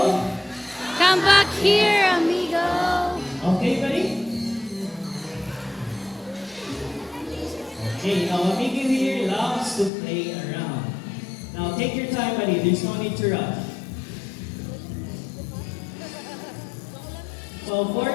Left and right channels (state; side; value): drops out; right; at 9.9 s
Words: Come back here, amigo. Okay, buddy? Okay, now amigo here loves to play around. Now, take your time, buddy. There's no need to rush. So for